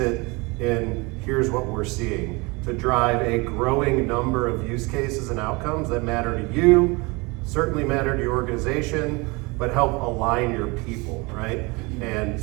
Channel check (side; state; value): left; quieter; 26.5 dB